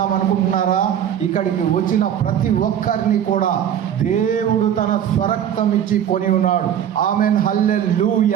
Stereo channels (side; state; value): left; quieter; 9.7 dB